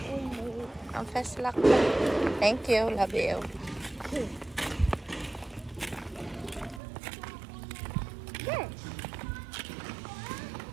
Ang fast luck. Thank you, love you.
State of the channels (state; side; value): drops out; left; at 6.8 s